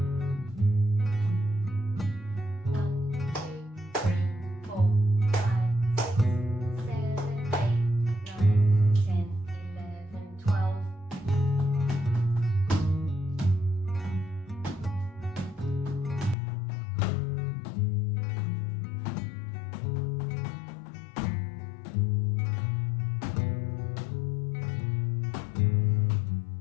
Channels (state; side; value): drops out; right; at 16.4 s